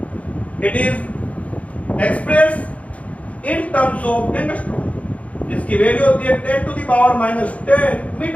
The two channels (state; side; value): late; right; 0.066 ms